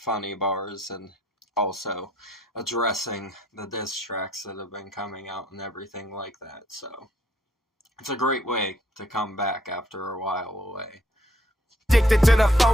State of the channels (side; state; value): both; normal; correlation 0.67